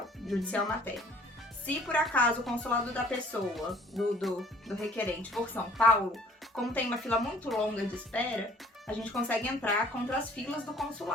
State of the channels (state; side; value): normal; both; correlation 0.55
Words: materno. Se por acaso o consulado da pessoa, do requerente, for São Paulo, como tem uma fila muito longa de espera, a gente consegue entrar contra as filas do